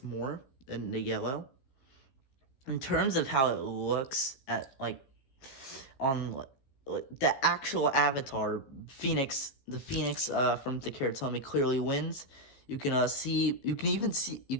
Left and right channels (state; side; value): late; right; 15 ms